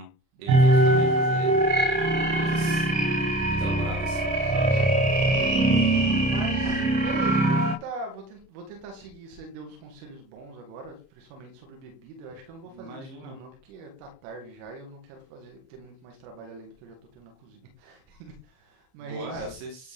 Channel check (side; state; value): left; late; 30 ms